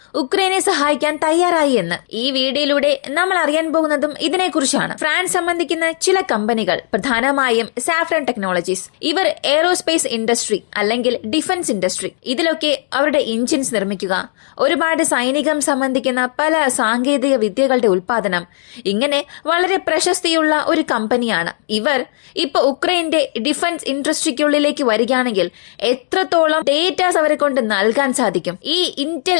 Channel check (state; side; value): silent; right; digital silence